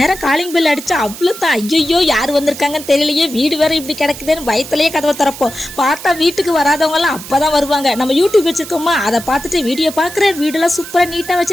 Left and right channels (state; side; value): noise; right; hiss, 13 dB below the sound